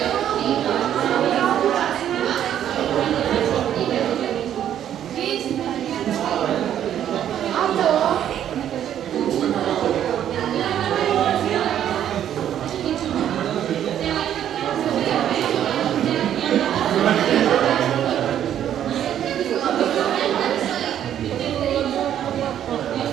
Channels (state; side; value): quieter; left; 10.4 dB